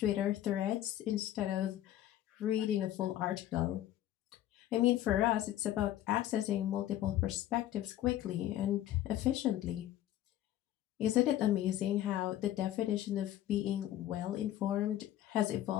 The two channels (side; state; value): right; quieter; 13.0 dB